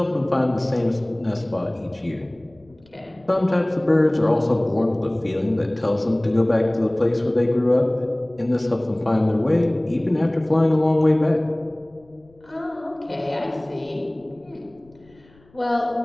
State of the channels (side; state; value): left; noise; rumble, 30 dB below the sound